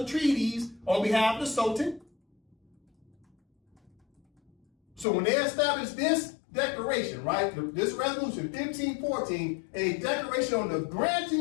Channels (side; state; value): right; drops out; at 5.1 s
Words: treaties on behalf of the Sultan. So when they established this declaration, right, this resolution 1514, a declaration on the granting